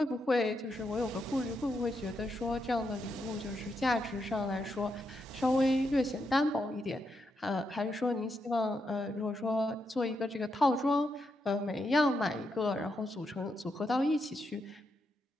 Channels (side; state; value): both; normal; correlation 0.82